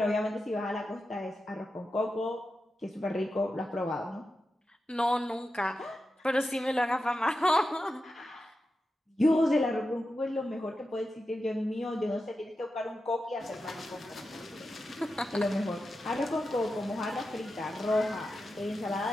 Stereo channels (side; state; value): both; normal; correlation 0.90